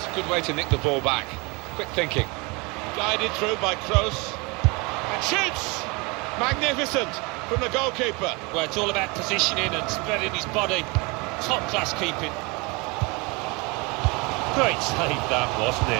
a good way to nick the ball back. Quick thinking. Guided through by Kroos. And shoots! Magnificent from the goalkeeper. Well, it's all about positioning and spreading his body. Top-class keeping. Great save that, wasn't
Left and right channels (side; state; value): left; quieter; 27.7 dB